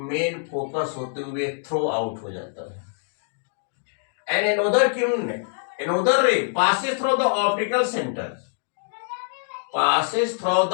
फोकस होते हुए थ्रो आउट हो जाता है। And another Kiran, another ray passes through the optical center, passes through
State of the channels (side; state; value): right; silent; digital silence